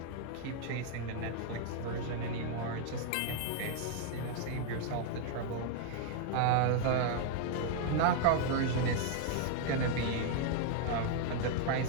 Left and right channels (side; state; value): both; different; correlation 0.00